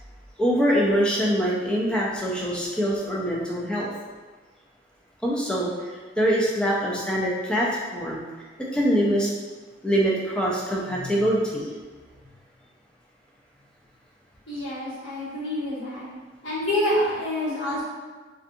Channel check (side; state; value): both; normal; correlation 0.60